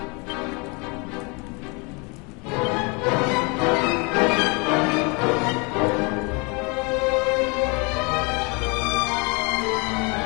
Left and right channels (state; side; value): quieter; right; 30.3 dB